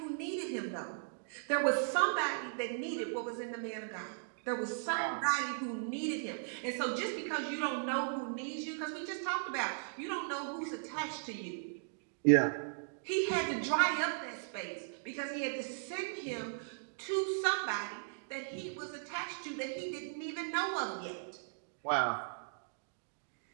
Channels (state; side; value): silent; left; digital silence